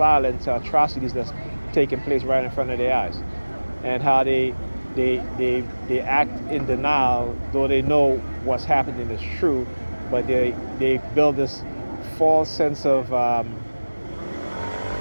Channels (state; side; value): inverted; both; correlation -1.00